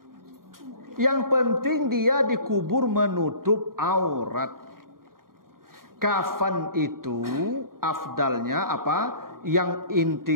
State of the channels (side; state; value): left; late; 0.92 ms